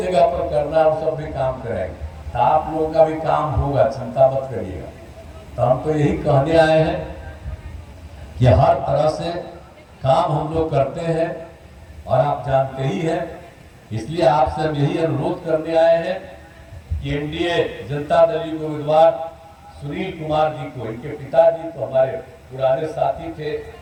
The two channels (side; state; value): both; identical; correlation 1.00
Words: जगह पर करना है वो सब भी काम करेंगे, तो आप लोगों का भी काम होगा, चिंता मत करिएगा। तो हम तो यही कहने आए हैं कि हर तरह से काम हम लोग करते हैं, और आप जानते ही हैं, इसलिए आपसे हम यही अनुरोध करने आए हैं कि एनडीए जनता दल के उम्मीदवार सुनील कुमार जी को, इनके पिताजी तो हमारे पुराने साथी थे,